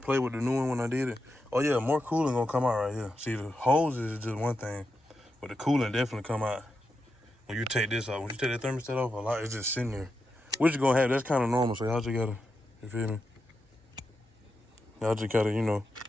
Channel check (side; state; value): both; normal; correlation 0.87